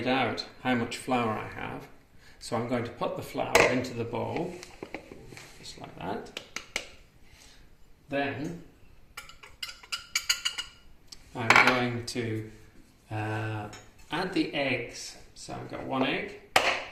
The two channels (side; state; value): both; identical; correlation 1.00